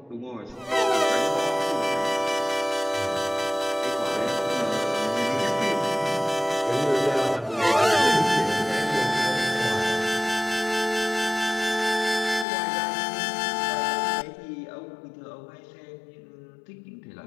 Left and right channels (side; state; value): right; drops out; at 12.5 s